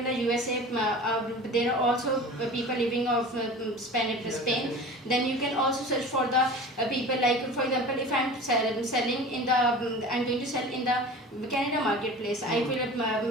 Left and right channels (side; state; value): both; normal; correlation 0.37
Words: the USA, there are also people living of Spain, then you can also search for the people, like for example, if I'm selling in the I'm going to sell in the Canada marketplace, I